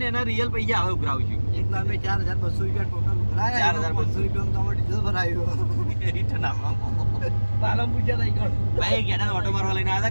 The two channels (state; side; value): inverted; both; correlation -1.00